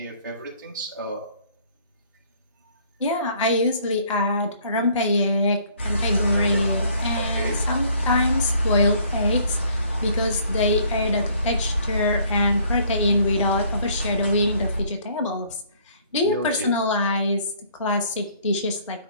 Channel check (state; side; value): inverted; both; correlation -0.60